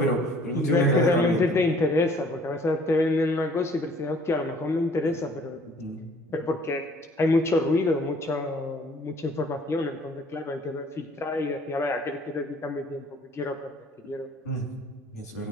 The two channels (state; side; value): normal; both; correlation 0.56